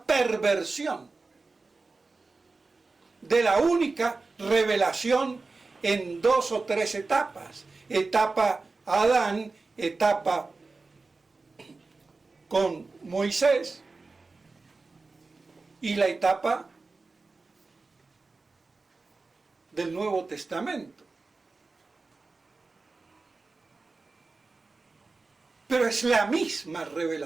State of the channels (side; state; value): left; quieter; 3.8 dB